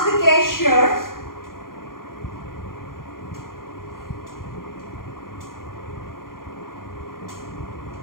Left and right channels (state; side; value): late; right; 0.91 ms